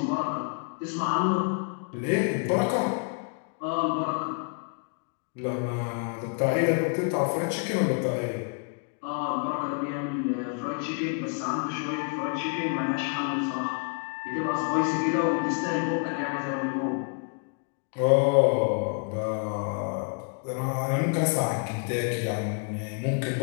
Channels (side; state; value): right; quieter; 38.7 dB